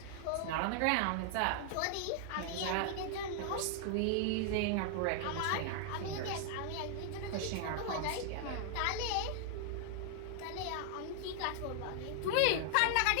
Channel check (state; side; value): different; both; correlation 0.00